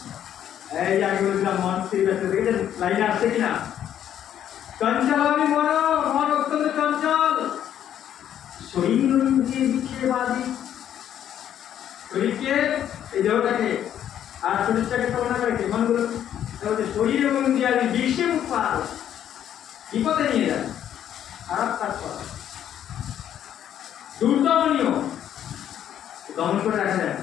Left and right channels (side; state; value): right; quieter; 10.3 dB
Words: এই যে আগে বলছিলাম মন স্থির ব্যস্ত, দেখেছেন লাইনে আসছে কিনা? চঞ্চলামি মন, মন অত্যন্ত চঞ্চল। শরীর ইন্দ্রিয় বিক্ষেপবাদী, শরীরকে এই দেহটাকে আর শরীরটাকে তুলনা করে মনগুলো শরীর এবং ইন্দ্রিয়াদি বিশ্বে উৎপাদ বিপদে নিয়ে যায়, খারাপ কাজ করা, দুর্দমনীয়, দমন করে রাখা যায়